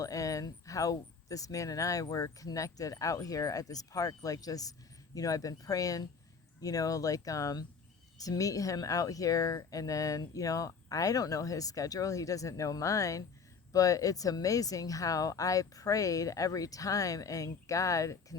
and how this man and I were connected out here at this park. Like, just I've been praying, to meet him out here. And then I don't know his schedule, he doesn't know mine. But it's amazing how I prayed every time, and God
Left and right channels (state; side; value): quieter; right; 5.4 dB